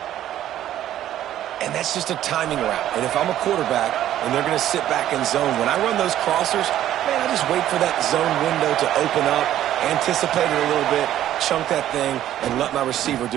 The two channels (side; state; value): left; quieter; 12.2 dB